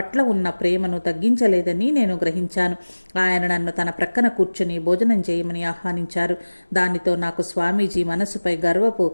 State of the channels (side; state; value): both; inverted; correlation -1.00